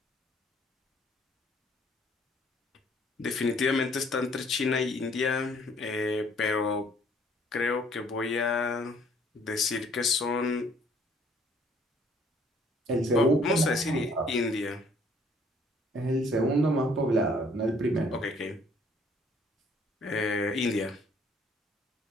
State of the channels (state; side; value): normal; both; correlation 0.61